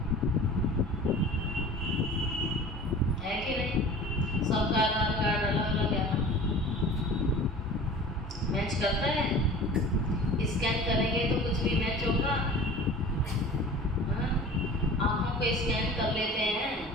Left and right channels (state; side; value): normal; both; correlation 0.41